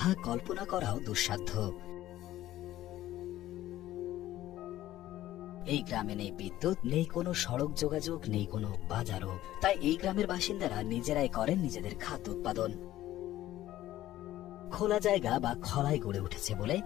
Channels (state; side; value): quieter; right; 14.3 dB